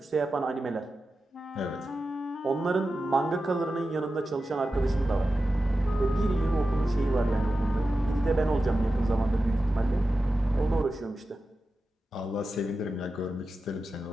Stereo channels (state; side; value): normal; both; correlation 0.92